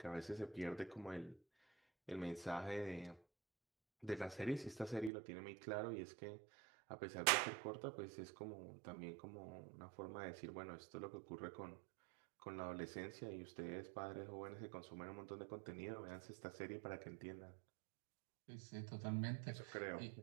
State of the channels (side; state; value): left; drops out; at 5.1 s